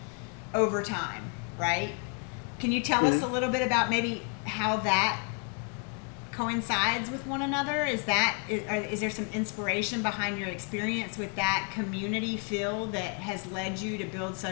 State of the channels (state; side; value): quieter; right; 39.2 dB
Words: over time, right? Can you tell us a little bit about maybe how that coincides with one another? Is there some inspiration behind your experience with that community feel that has led you to build